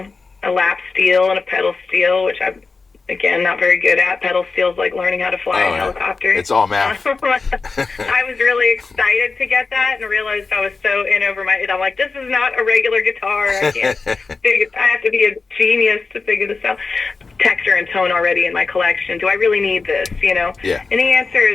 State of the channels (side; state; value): right; quieter; 4.3 dB